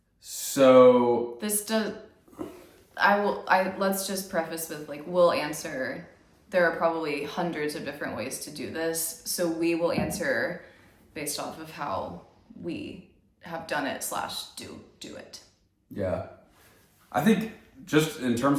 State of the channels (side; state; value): both; identical; correlation 1.00